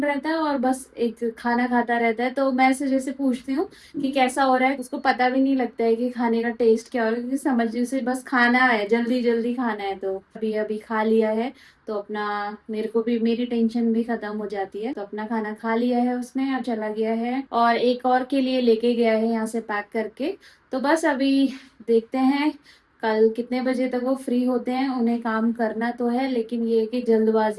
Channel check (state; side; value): identical; both; correlation 1.00